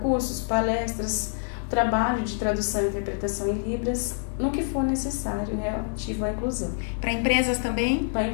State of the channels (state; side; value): silent; right; digital silence